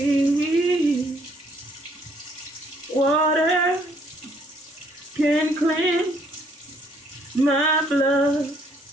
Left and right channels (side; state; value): both; normal; correlation 0.66